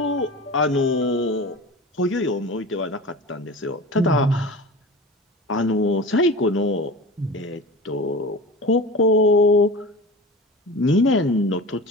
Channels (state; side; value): normal; both; correlation 0.33